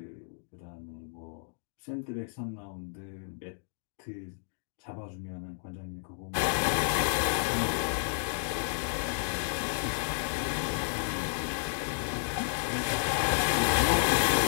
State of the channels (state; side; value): silent; right; digital silence